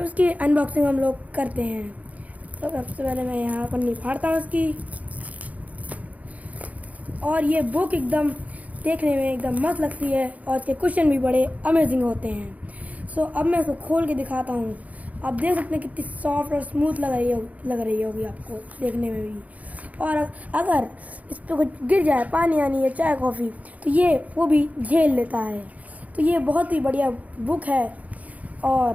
उसकी अनबॉक्सिंग हम लोग करते हैं। तो सबसे पहले मैं यहाँ पन्नी फाड़ता हूँ इसकी। और ये बुक एकदम देखने में एकदम मस्त लगती है और इसके क्वेश्चन भी बड़े अमेजिंग होते हैं। अब मैं इसको खोल के दिखाता हूँ। आप देख सकते हैं कितनी सॉफ्ट और स्मूथ लग रही होगी आपको देखने में भी। और अगर इस पर कुछ गिर जाए, पानी आनी या चाय कॉफ़ी, तो ये वो भी झेल लेता है। तो ये बहुत ही बढ़िया बुक है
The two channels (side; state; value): left; late; 0.072 ms